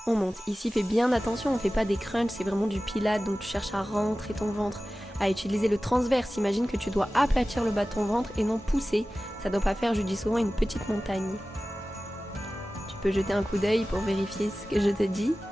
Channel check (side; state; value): both; normal; correlation 0.96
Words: on monte. Ici, fais bien attention, on ne fait pas des crunchs, c'est vraiment du pilates, donc tu cherches à rentrer ton ventre, à utiliser le transverse. Imagine que tu dois aplatir le bas de ton ventre et non pousser. Ça ne doit pas faire, je dis souvent, une petite montagne. Tu peux jeter un coup d'œil pour vérifier ce que je te dis.